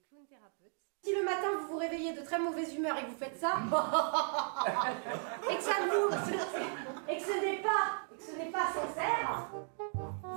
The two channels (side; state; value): left; silent; 54 dB below the other